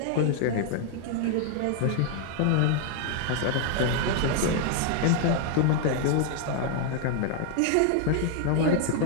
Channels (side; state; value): both; different; correlation 0.00